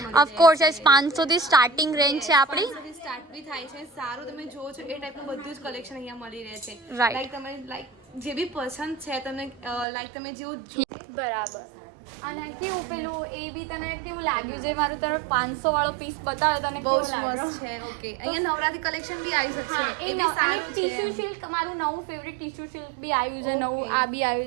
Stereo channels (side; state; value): left; drops out; at 9.9 s